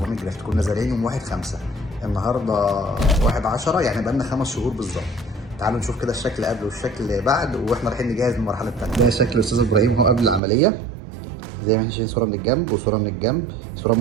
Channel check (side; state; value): left; drops out; at 10.4 s